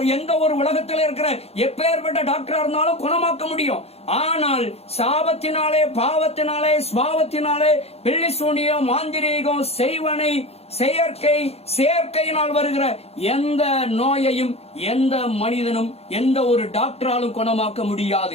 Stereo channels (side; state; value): right; late; 0.30 ms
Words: எந்த ஒரு உலகத்தில் இருக்கிற எப்பேற்பட்ட டாக்டரா இருந்தாலும் குணமாக்க முடியும். ஆனால் சாபத்தினாலே, பாவத்தினாலே, சுபாவத்தினாலே, பில்லி சூனியம், மாந்திரீகம், செய்வனை, செயற்கையினால் வருகிற எந்த நோயையும் எந்த மனிதனும் எந்த ஒரு டாக்டராலும் குணமாக்க